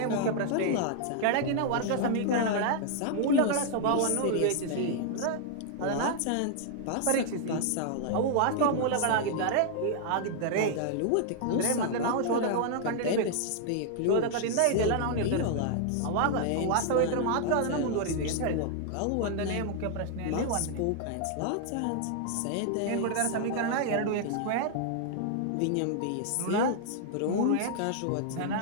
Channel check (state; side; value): different; both; correlation 0.00